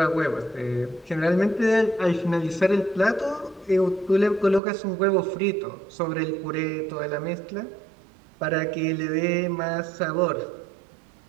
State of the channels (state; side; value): drops out; left; at 4.6 s